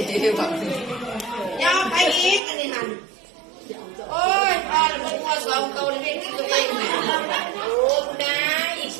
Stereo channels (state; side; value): drops out; left; at 2.4 s